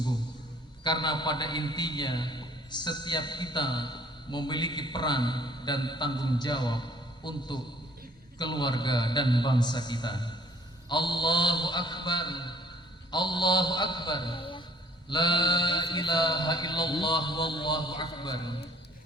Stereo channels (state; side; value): normal; both; correlation 0.58